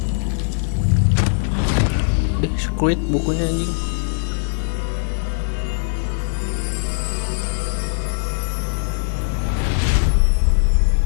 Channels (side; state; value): right; silent; digital silence